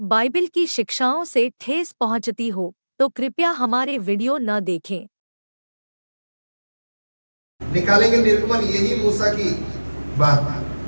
की शिक्षाओं से ठेस पहुंचती हो तो कृपया हमारे वीडियो न देखें। निकालेंगे निर्गमन, यही मूसा की बात,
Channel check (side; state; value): both; inverted; correlation -1.00